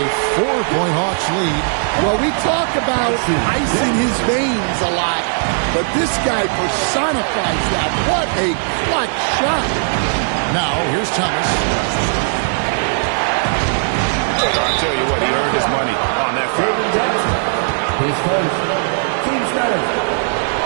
4-point Hawks lead. Well, we talk about ice in his veins a lot, but this guy personifies that. What a clutch shot. Now, here's Thomas. I'll tell you what, he earned his money on that foul. His first team starter.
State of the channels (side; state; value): left; silent; 68 dB below the other